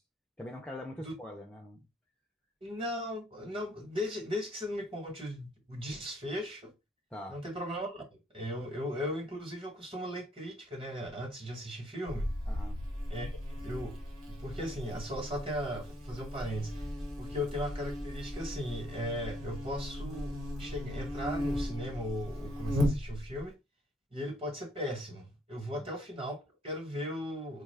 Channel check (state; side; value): normal; both; correlation 0.67